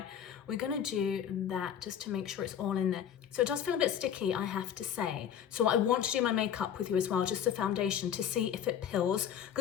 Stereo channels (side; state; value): right; quieter; 9.1 dB